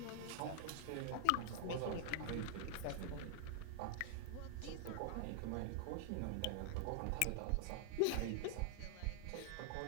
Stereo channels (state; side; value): different; both; correlation 0.00